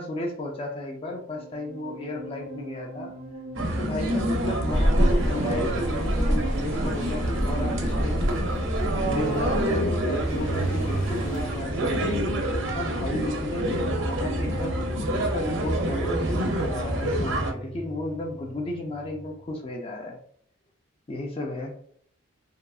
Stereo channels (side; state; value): both; normal; correlation 0.63